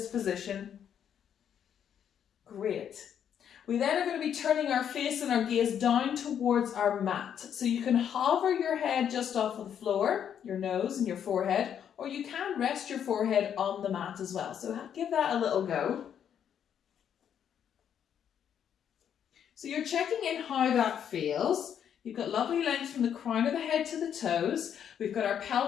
position. Great. We then are going to be turning our face and our gaze down towards our mat. So you can hover your head just off of the floor, your nose and your forehead, or you can rest your forehead on the mat as well. So give that a little go. So you're checking in how that feels. You've got lovely length from the crown of the head to the toes. We've got our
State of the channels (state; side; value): quieter; right; 8.8 dB